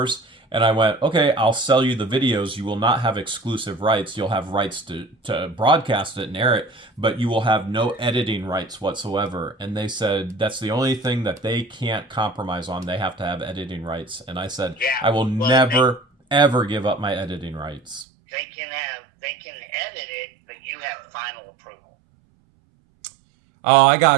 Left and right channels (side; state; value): left; drops out; at 18.1 s